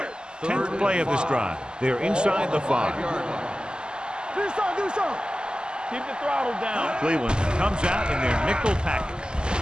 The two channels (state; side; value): late; left; 0.047 ms